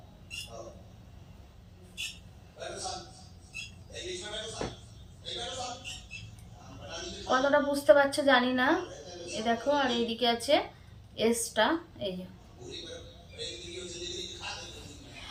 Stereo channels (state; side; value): identical; both; correlation 1.00